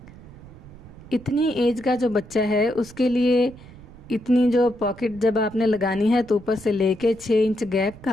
इतनी एज का जो बच्चा है उसके लिए इतनी जो पॉकेट जब आपने लगानी है तो ऊपर से लेके 6 इंच गैप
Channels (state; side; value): noise; right; rumble, 19 dB below the sound